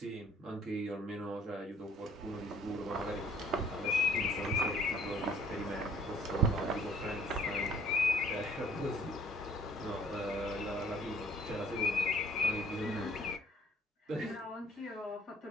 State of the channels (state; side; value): normal; both; correlation 0.57